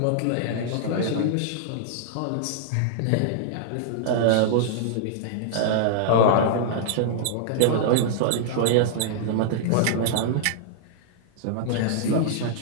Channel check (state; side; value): different; both; correlation -0.02